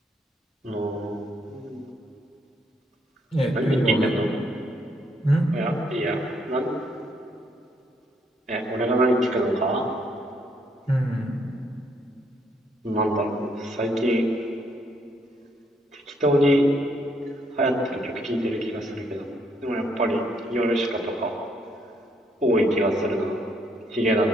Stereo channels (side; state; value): both; normal; correlation 0.71